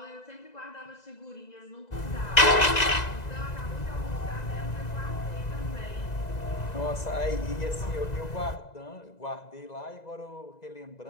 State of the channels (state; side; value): late; right; 2.0 ms